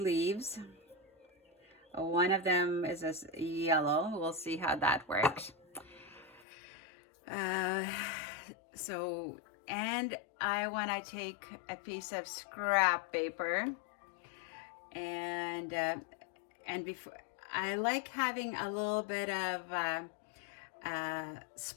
One of them is a yellow. We'll see how that works. And I want to take a piece of scrap paper, and before, I like having a little bit of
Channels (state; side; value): drops out; right; at 6.5 s